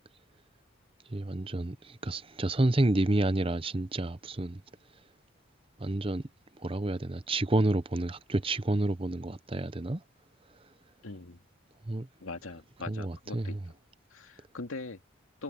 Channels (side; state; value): both; normal; correlation 0.82